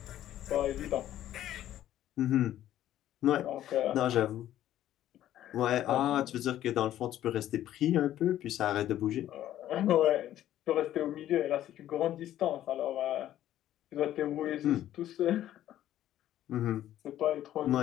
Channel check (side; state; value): right; quieter; 12.5 dB